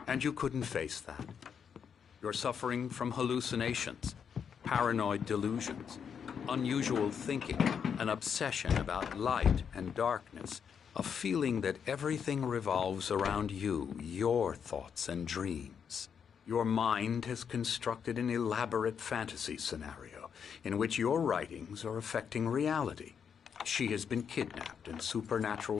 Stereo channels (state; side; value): quieter; right; 7.2 dB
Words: and you couldn't face that. You're suffering from hallucinations, paranoid delusions, unusual thinking, an obsession about light and darkness, a feeling that everything revolves around you, your thoughts and dreams. Your mind has constructed an elaborate fantasy scenario in which your writings are affecting reality. She has been kidnapped and